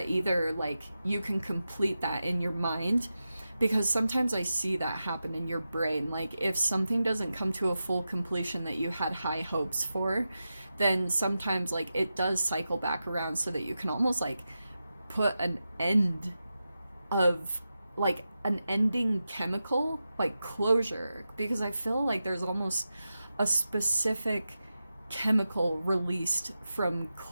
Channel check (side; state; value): both; inverted; correlation -0.91